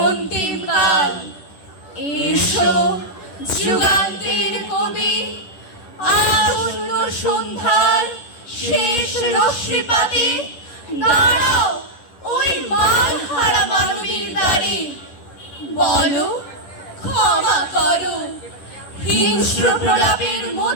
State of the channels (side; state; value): right; late; 11 ms